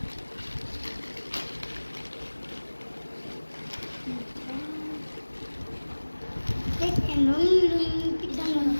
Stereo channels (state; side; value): inverted; both; correlation -1.00